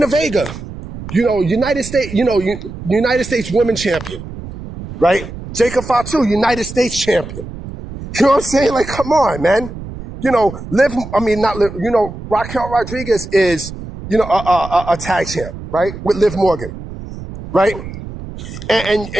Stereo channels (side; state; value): right; noise; rumble, 11 dB below the sound